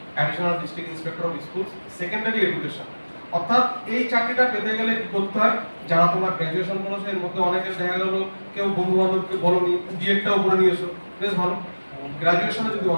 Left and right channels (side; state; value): both; inverted; correlation -1.00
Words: additional district inspector of schools secondary education. অর্থাৎ এই চাকরিটা পেতে গেলে কি করতে হয়, যারা তোমরা গ্র্যাজুয়েশন করেছো এর মধ্যে অনেকের দেখা গেল কেউ বন্ধু বান্ধবকে বলনি বিএডটাও করে নিয়েছো, বেশ ভালো। গ্র্যাজুয়েশনে যদি